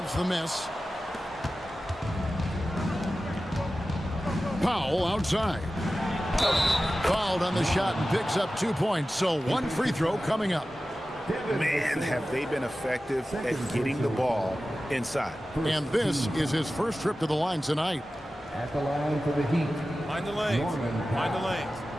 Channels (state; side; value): normal; both; correlation 0.95